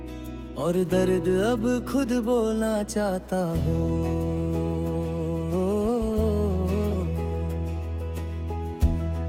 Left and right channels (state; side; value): identical; both; correlation 1.00